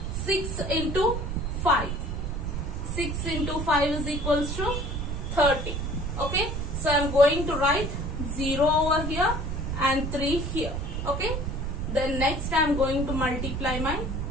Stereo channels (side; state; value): right; noise; rumble, 3 dB below the sound